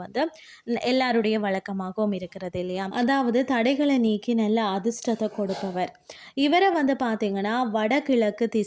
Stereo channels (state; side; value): identical; both; correlation 1.00